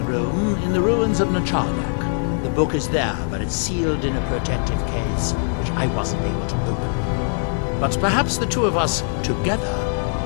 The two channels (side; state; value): right; silent; 59 dB below the other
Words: room in the ruins of Nachardak. The book is there, but it's sealed in a protective case, which I wasn't able to open. But perhaps the two of us together